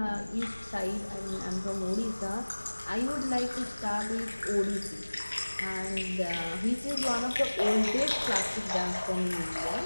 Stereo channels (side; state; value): both; inverted; correlation -1.00